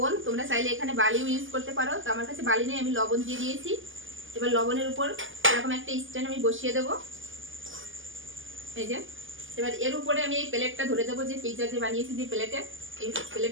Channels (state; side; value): late; left; 0.58 ms